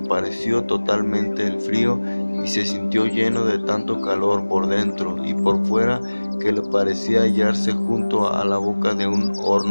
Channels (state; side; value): inverted; both; correlation -1.00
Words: totalmente el frío y se sintió lleno de tanto calor por dentro y por fuera que le parecía hallarse junto a la boca de un